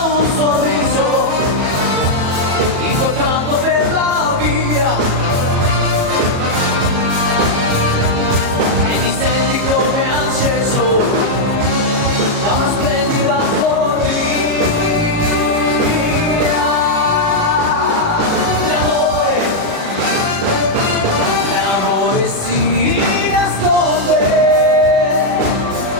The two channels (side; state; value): left; late; 37 ms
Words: un sorriso incontrato per la via e ti senti come acceso da una splendida follia. L'amore si nasconde,